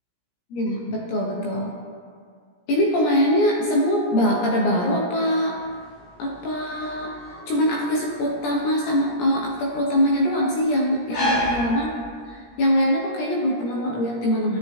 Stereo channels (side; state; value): right; late; 17 ms